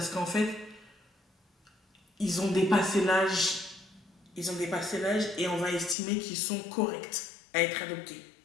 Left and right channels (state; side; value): drops out; right; at 6.0 s